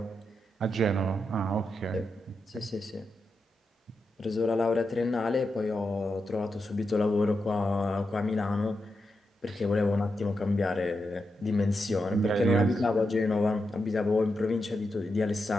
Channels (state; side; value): normal; both; correlation 0.86